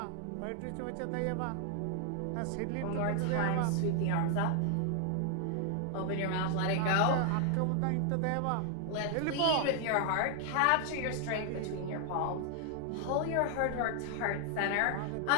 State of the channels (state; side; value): different; both; correlation 0.00